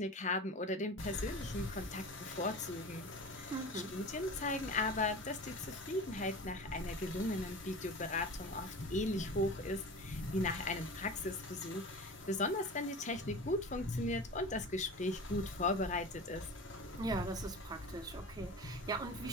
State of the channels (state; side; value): normal; both; correlation 0.33